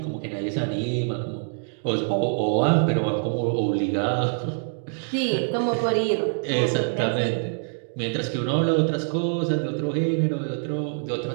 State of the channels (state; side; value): silent; left; digital silence